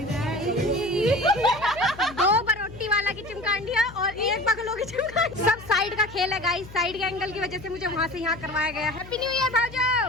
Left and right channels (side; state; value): left; noise; hum, 17 dB below the sound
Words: दो बरोटी वाला की चिमकांडिया और एक बगलों की चिमकांडी। सब साइड का खेल है गाइस, साइड के एंगल की वजह से मुझे वहाँ से यहाँ करवाया गया। हैप्पी न्यू ईयर भाऊजा।